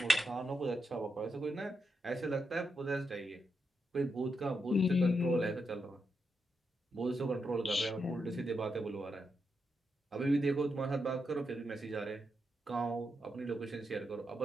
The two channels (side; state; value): both; normal; correlation 0.84